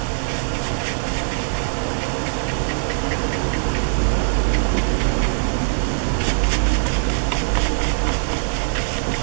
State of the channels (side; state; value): left; silent; digital silence